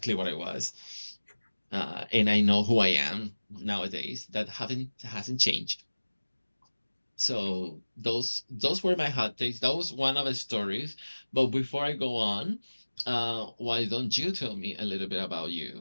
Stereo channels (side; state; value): both; inverted; correlation -1.00